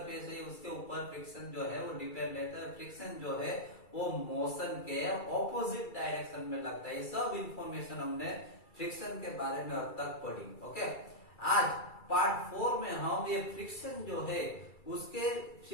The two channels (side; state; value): right; late; 2.3 ms